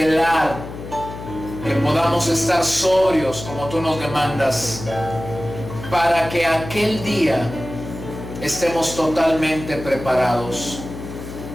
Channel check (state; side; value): noise; left; hum, 11 dB below the sound